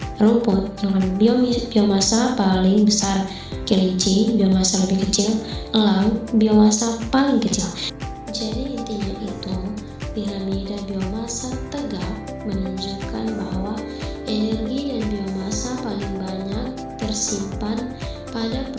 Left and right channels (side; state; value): both; identical; correlation 1.00